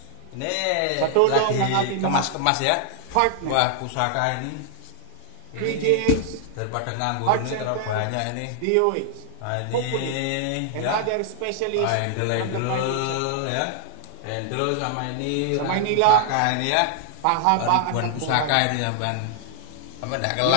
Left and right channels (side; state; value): both; different; correlation -0.01